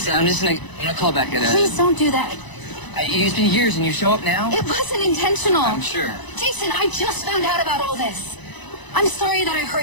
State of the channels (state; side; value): late; right; 1.0 ms